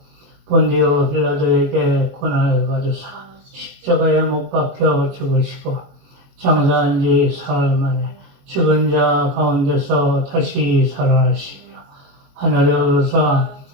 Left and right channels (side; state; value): left; late; 22 ms